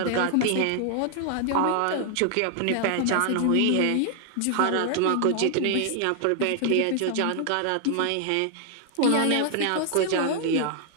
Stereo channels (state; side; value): different; both; correlation 0.00